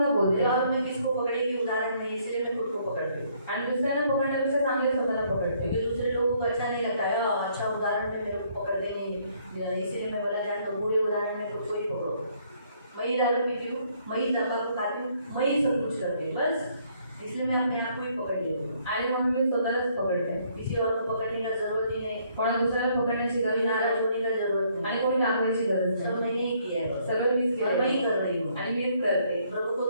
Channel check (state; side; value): inverted; both; correlation -0.67